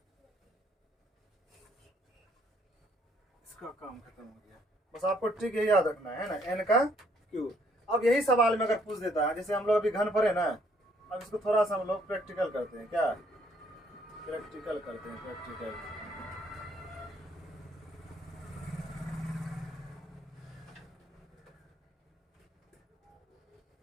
इसका काम खत्म हो गया। बस आपको ट्रिक यही याद रखना है ना, n का क्यूब। अब यही सवाल में अगर पूछ देता है, जैसे हम लोग अभी घन पढ़े ना, अब इसको थोड़ा सा हम लोग प्रैक्टिकल करते हैं, क्या प्रैक्टिकल करते हैं, प्रैक्टिकल।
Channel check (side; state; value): both; normal; correlation 0.66